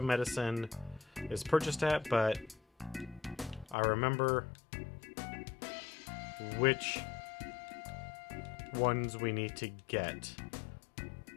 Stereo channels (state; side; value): drops out; right; at 3.8 s